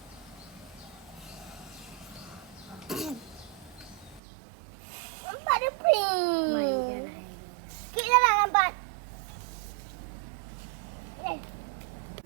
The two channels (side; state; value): left; drops out; at 4.2 s